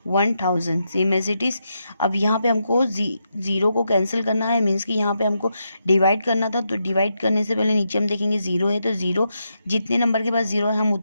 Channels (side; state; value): both; inverted; correlation -0.83